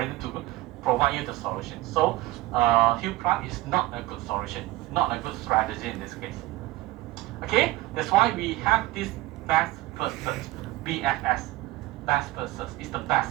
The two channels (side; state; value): left; quieter; 18.4 dB